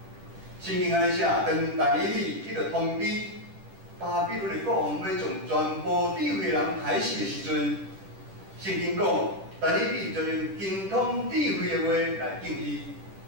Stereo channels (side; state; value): left; late; 10 ms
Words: 圣经安尼写，当但以理伊着通知巴比伦的国王要将全部智慧人害死的时阵，圣经讲，但以理就用精通智慧的话来应伊，